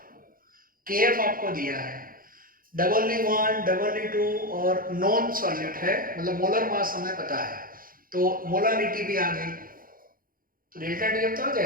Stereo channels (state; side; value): late; left; 0.41 ms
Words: KF आपको दिया है, W1 W2 और नॉन सॉल्यूट है, मतलब मोलर मास हमें पता है तो मोलारिटी भी आ गई तो डेल्टा TF तो आ